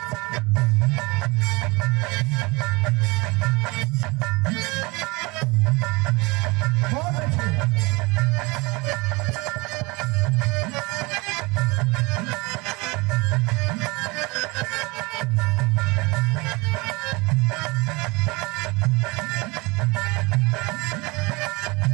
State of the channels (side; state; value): left; quieter; 25.3 dB